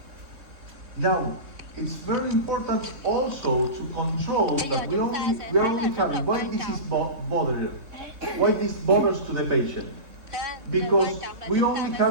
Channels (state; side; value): late; left; 3.6 ms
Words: Now, it's very important also to control Bây giờ that chúng ta sẽ we are thấy là only rất là having, why quan this trọng. is bothered, why this bothers to the patient. Điều Because quan trọng là we chúng ta only